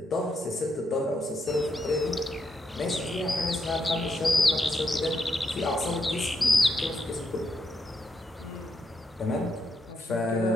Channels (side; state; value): both; normal; correlation 0.81